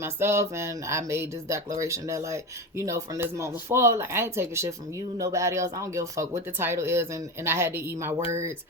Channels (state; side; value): normal; both; correlation 0.22